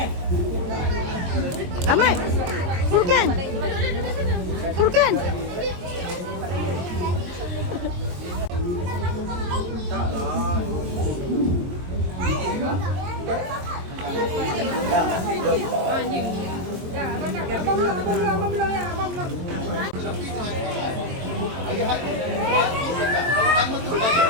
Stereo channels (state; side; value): late; left; 22 ms